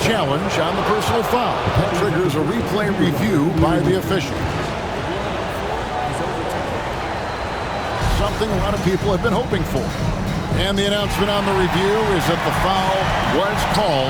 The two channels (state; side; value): identical; both; correlation 1.00